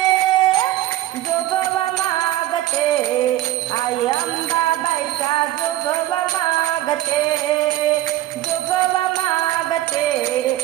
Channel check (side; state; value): left; quieter; 14.8 dB